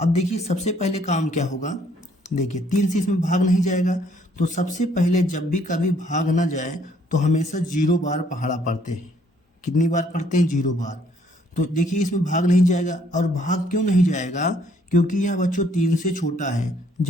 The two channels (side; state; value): both; normal; correlation 0.65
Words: देखिए सबसे पहले काम क्या होगा। देखिए 3 से इसमें भाग नहीं जाएगा, तो सबसे पहले जब भी कभी भाग ना जाए तो हमेशा 0 बार पहाड़ा पढ़ते हैं। कितनी बार पढ़ते हैं? 0 बार। तो देखिए इसमें भाग नहीं जाएगा, और भाग क्यों नहीं जाएगा? क्योंकि यह बच्चों 3 से छोटा है।